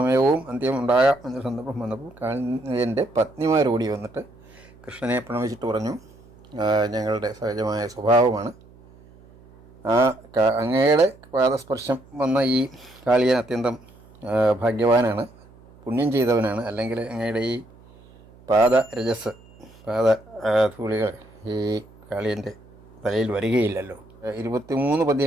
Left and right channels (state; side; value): noise; right; hum, 25 dB below the sound